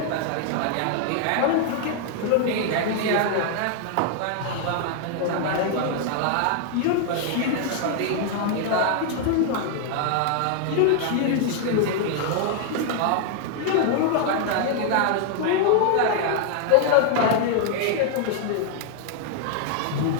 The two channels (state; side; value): different; both; correlation 0.00